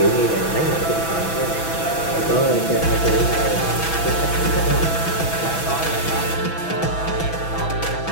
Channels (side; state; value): right; late; 6.1 ms